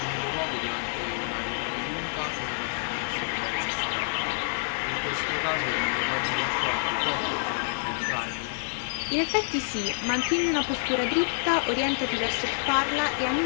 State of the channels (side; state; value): right; silent; 57 dB below the other